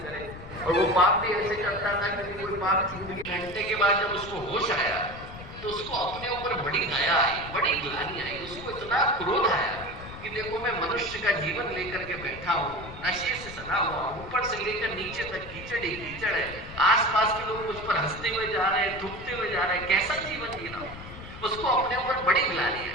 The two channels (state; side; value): noise; left; rumble, 14 dB below the sound